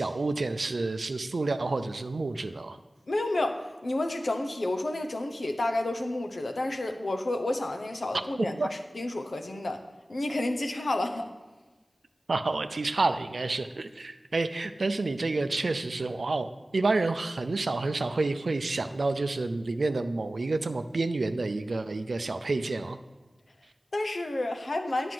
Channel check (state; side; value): normal; both; correlation 0.95